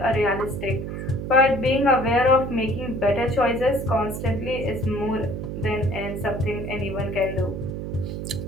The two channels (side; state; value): right; noise; hum, 5 dB below the sound